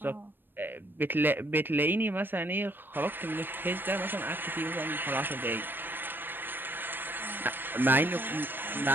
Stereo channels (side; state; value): left; late; 0.095 ms